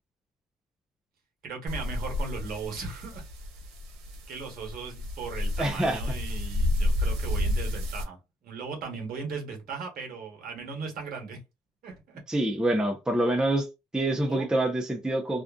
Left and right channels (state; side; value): normal; both; correlation 0.74